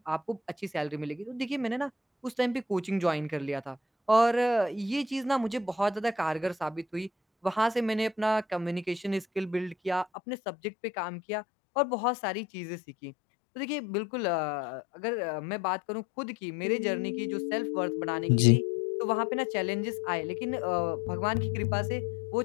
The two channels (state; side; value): drops out; right; at 10.1 s